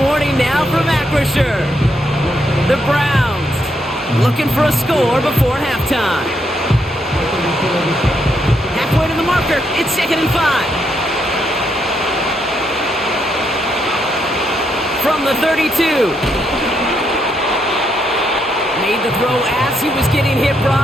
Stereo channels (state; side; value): normal; both; correlation 0.78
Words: warning now from Acrisure. The Browns looking for a score before halftime. Halfway to the marker. It's 2nd and 5. From the 32. Made the throw as he was getting hit,